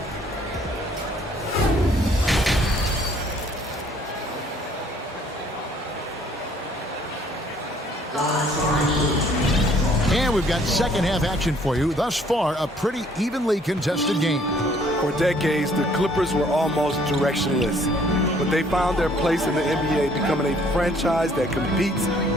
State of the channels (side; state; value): both; normal; correlation 0.61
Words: And we've got second half action for you. Thus far, a pretty evenly contested game. For decades, the Clippers were almost directionless, but they found their place in the NBA, becoming a franchise that competes